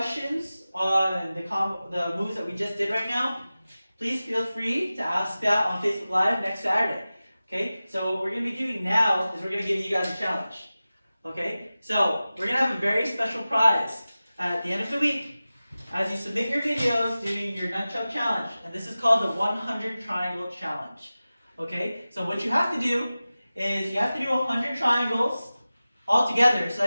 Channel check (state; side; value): inverted; both; correlation -0.96